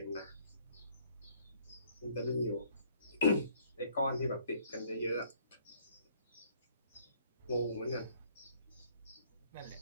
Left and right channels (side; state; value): both; inverted; correlation -0.62